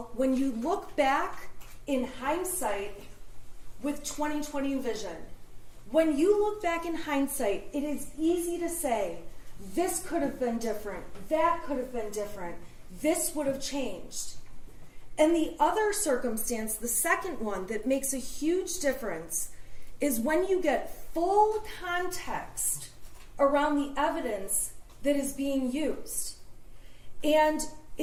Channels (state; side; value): identical; both; correlation 1.00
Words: when you look back in hindsight with 20/20 vision, when you look back in hindsight, it is easy to say, this could have been different, that could have been different, this would have changed. And the other circumstance, the second one that makes a huge difference, is when you get full context around the evidence that is being used. And